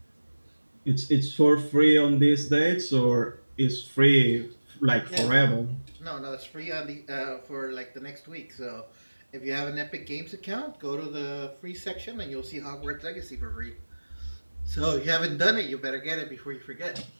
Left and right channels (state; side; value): inverted; both; correlation -1.00